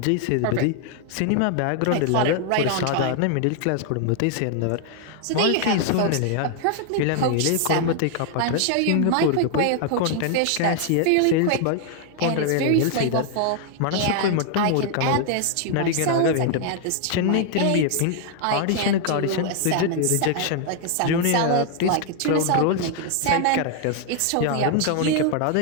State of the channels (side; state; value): both; different; correlation 0.00